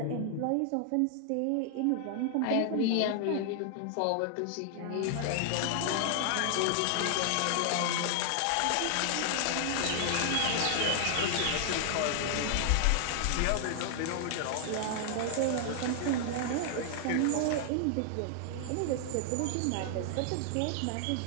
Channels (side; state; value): both; different; correlation 0.00